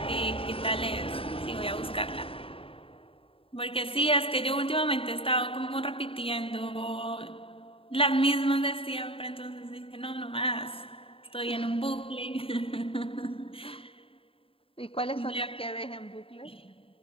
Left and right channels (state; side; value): late; right; 0.27 ms